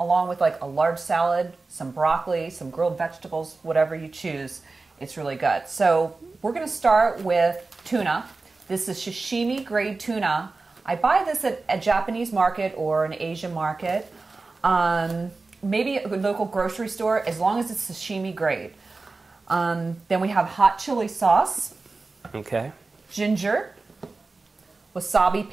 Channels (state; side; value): quieter; left; 3.7 dB